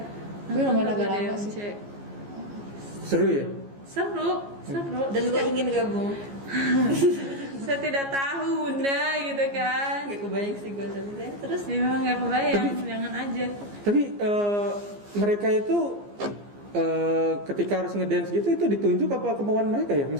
Tapi lumayan agak lagu lama DMC. sih. Seru ya? Seru. Dan gue ingin gabung. Saya tidak tahu bunda gitu kan. Gak kebayang sih gue tapi terus. Ya memang nggak kebayang, jangan aja. Tapi mereka itu ketika harus ngedance gitu itu ditunjuk apa kemauan mereka ya?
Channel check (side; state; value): left; late; 15 ms